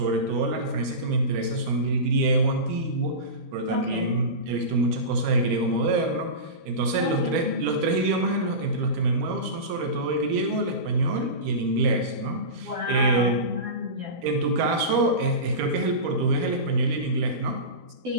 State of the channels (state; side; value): late; left; 12 ms